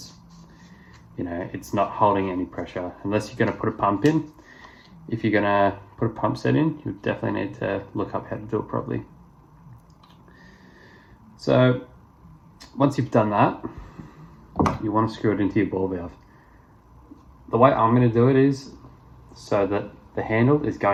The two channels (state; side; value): identical; both; correlation 1.00